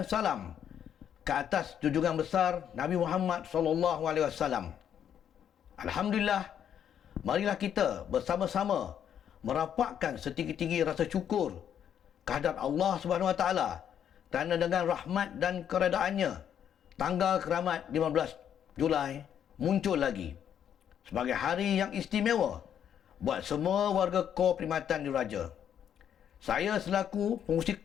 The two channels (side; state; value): right; quieter; 9.2 dB